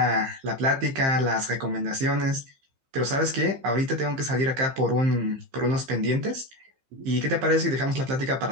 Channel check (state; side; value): late; left; 15 ms